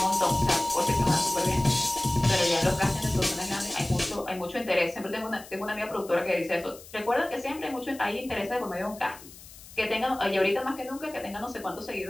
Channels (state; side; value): noise; left; hiss, 19 dB below the sound